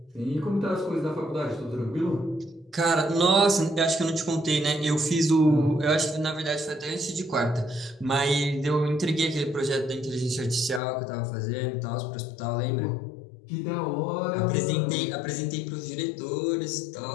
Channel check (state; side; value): drops out; right; at 10.8 s